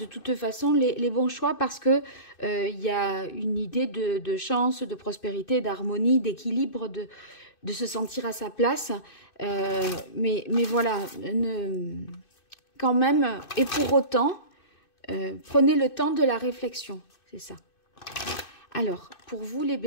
toute façon les bons choix parce que il y a une idée de chance, de prospérité, d'harmonie, d'équilibre, de se sentir à sa place. Mais voilà, quand même, et pour autant, prenez le temps de la réflexion, c'est ça. Alors, pour vous les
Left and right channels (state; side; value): late; right; 2.6 ms